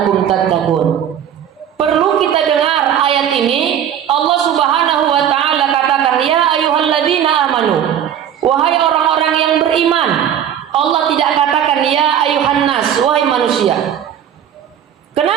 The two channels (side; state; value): left; quieter; 9.6 dB